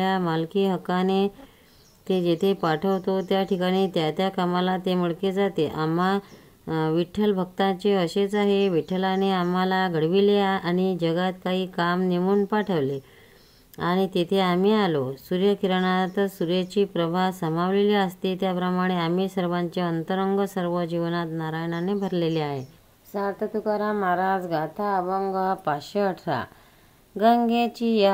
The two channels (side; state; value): both; identical; correlation 1.00